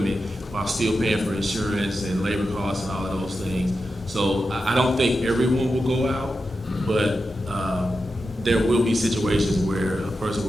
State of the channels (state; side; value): normal; both; correlation 0.90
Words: while still paying for insurance and labor costs and all of those things. So I don't think everyone will go out, but there will be situations where a person